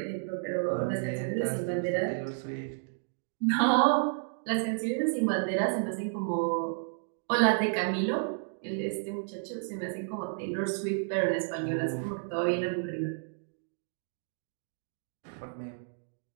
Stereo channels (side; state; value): left; silent; digital silence